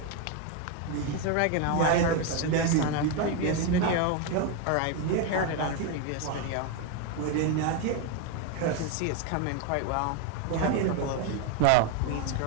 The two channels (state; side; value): different; both; correlation 0.02